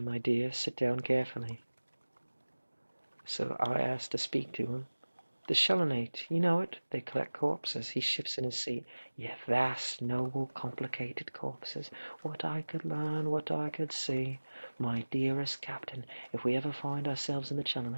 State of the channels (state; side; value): inverted; both; correlation -1.00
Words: sit down carefully. So I asked to speak to him. The Shellonate, you know it, they collect corpses. He shifts in his seat. Yeah, vast, noble, complicated corpses. What I could learn, what I could see. My dearest captain, if we ever find ourselves in the